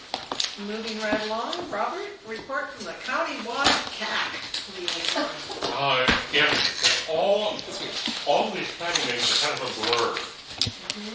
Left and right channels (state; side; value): identical; both; correlation 1.00